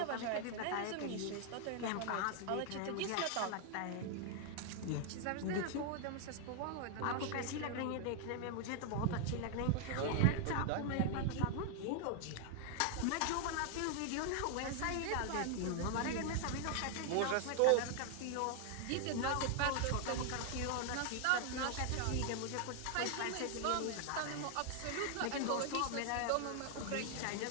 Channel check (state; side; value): different; both; correlation 0.00